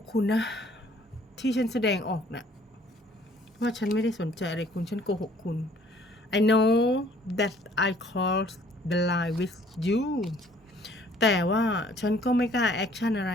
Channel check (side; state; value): both; normal; correlation 0.58